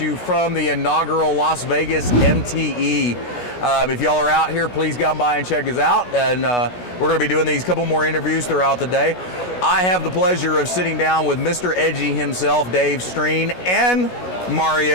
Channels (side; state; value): right; late; 16 ms